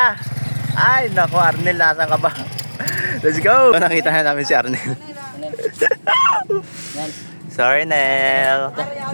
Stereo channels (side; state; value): both; inverted; correlation -1.00